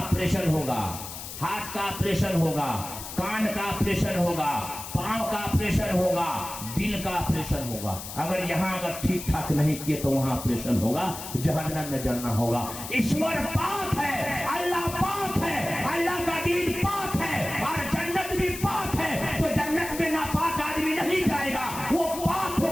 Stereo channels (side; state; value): left; noise; hiss, 10 dB below the sound